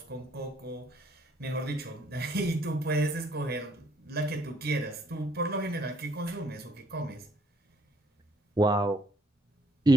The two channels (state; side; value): normal; both; correlation 0.65